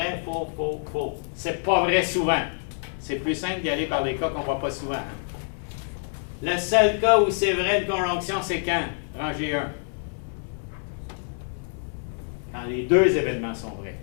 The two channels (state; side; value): silent; right; digital silence